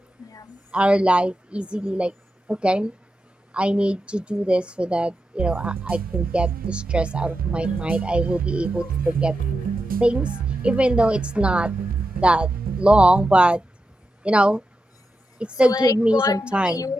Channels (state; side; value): normal; both; correlation 0.89